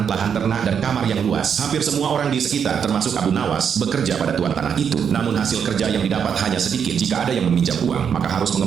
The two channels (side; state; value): left; quieter; 7.4 dB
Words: lahan ternak, dan kamar yang luas. Hampir semua orang di sekitar, termasuk Abu Nawas, bekerja pada tuan tanah itu. Namun hasil kerja yang didapat hanya sedikit. Jika ada yang meminjam uang, maka harus